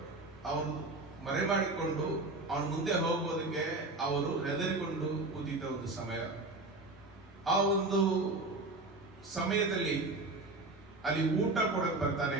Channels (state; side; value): quieter; left; 3.0 dB